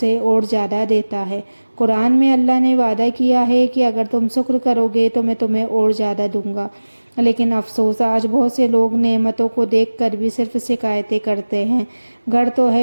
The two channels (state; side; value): inverted; both; correlation -1.00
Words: और ज़्यादा देता है। कुरान में अल्लाह ने वादा किया है कि अगर तुम शुक्र करोगे तो मैं तुम्हें और ज़्यादा दूंगा। लेकिन अफसोस, आज बहुत से लोग नेमतों को देखकर भी सिर्फ शिकायतें करते हैं। घर तो